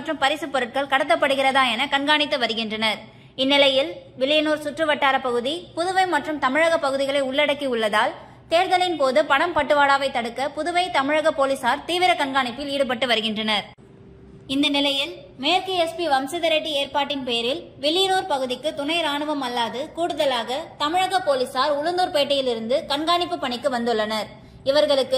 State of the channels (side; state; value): both; identical; correlation 1.00